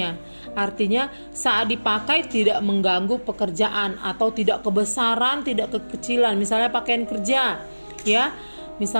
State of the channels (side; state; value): both; inverted; correlation -1.00